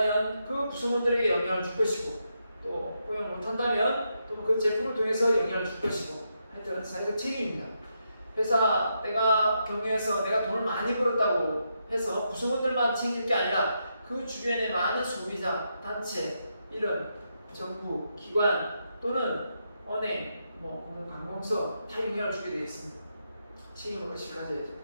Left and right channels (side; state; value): both; inverted; correlation -0.82